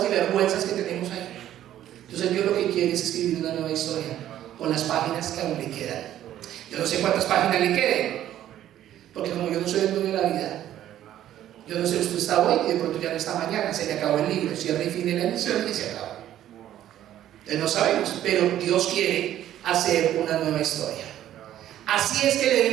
y vergüenzas que tenemos ahí. Entonces Dios lo que quiere es escribir una nueva historia con las páginas que aún le quedan. Yo no sé cuántas páginas le queden, porque como yo no soy el dueño de la vida, yo no sé, usted está hoy y de pronto ya no está mañana, se le acabó el libro, cierra y fin de la emisión y se acaba. Entonces no sabemos, pero Dios quiere hacer una nueva historia. Así es que le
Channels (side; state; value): left; quieter; 12.1 dB